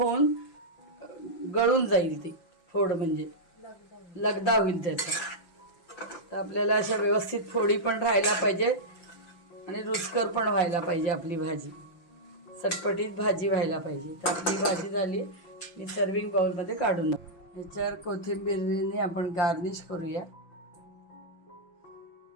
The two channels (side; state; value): right; late; 5.8 ms